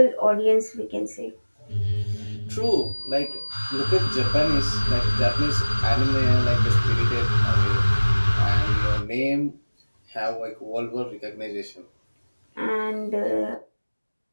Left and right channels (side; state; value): both; inverted; correlation -1.00